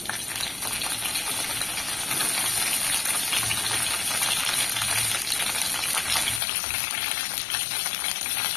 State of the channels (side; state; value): right; drops out; at 6.4 s